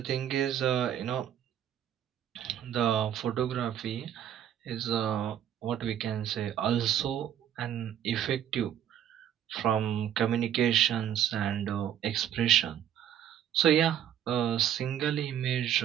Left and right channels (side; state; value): left; quieter; 10.2 dB